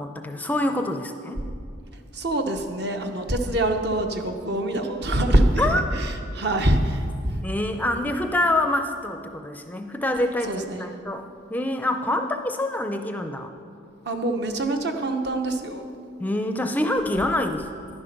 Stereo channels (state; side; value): normal; both; correlation 0.64